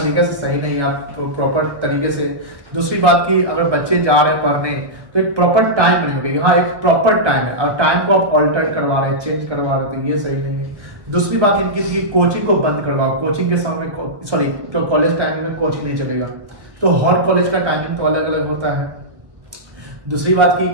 से सही नहीं है, आप प्रॉपर तरीके से। दूसरी बात की अगर बच्चे जा रहे हैं पढ़ने तो एक प्रॉपर टाइम बनी होगी, हाँ एक प्रॉपर टाइम है और टाइम को आप ऑल्टर करवा रहे हैं, चेंज करवा रहे हैं, तो ये सही नहीं है। दूसरी बात इनकी कोचिंग को बंद करवाओ, कोचिंग के समय में सॉरी तो कॉलेज टाइम में कोचिंग नहीं चलेगा, तो हर कॉलेज का टाइमिंग तो अलग अलग होता है। दूसरी बात की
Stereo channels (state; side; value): late; left; 1.3 ms